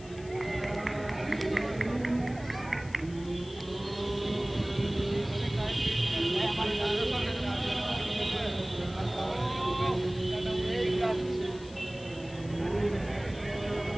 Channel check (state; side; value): noise; left; hiss, 21 dB below the sound